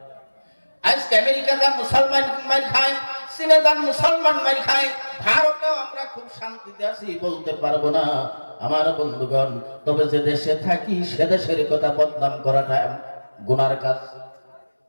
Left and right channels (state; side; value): inverted; both; correlation -1.00